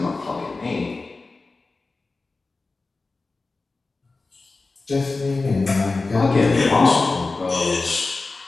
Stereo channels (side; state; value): right; quieter; 3.7 dB